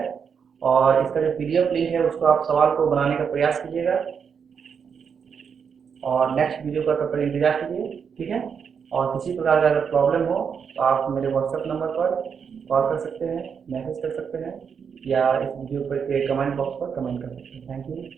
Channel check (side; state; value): left; quieter; 6.7 dB